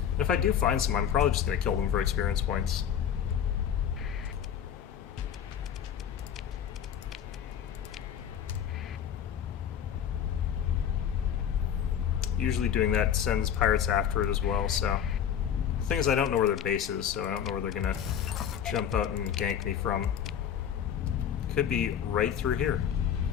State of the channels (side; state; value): right; quieter; 8.9 dB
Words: if I do find some, I'm probably just going to kill them for experience points. Usually doing that sends pirates after it as well, so... The thing is, I don't know where their base is, so I don't know where they're going to jump out and gank me from. Could be right through here.